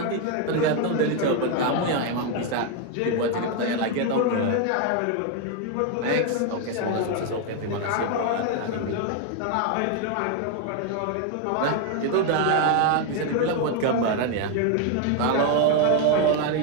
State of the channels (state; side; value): different; both; correlation 0.01